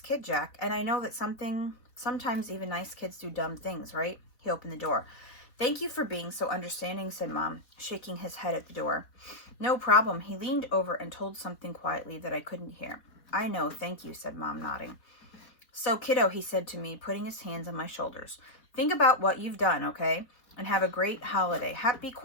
Jack, and I know that sometimes even nice kids do dumb things, right? He opened the door. Thank you for being so understanding, said Mom, shaking his head at the door. No problem. He leaned over and told something quietly that I couldn't hear. I know, thank you, said Mom, nodding. So, kiddo, he said to me, putting his hands on my shoulders. Think about what you've done, okay? And have a great holiday. Happy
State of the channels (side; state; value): right; late; 4.0 ms